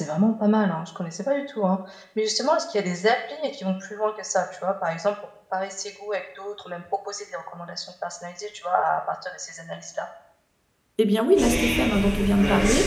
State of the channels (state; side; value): identical; both; correlation 1.00